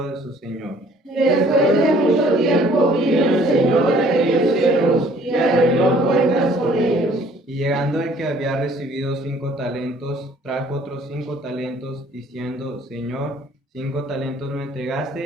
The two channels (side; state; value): both; normal; correlation 0.57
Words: de su señor. Después de mucho tiempo vino el señor de aquellos siervos y arregló cuentas con ellos. Y llegando el que había recibido 5 talentos, trajo otros 5 talentos, diciendo: Señor, 5 talentos me